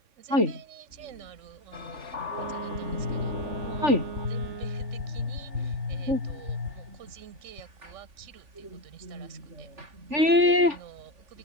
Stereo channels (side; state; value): left; late; 3.5 ms